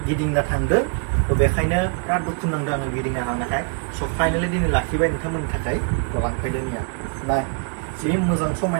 गिदिंना थांदों थ बेखायनो बिराद दुखु नांदों आङो गिदिंना थांनायखाय स फाइनाली दिनै लाखिबाय नोंथांमोननि थाखाय लांफैदो निया ना जि मोजां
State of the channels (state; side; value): quieter; left; 34.2 dB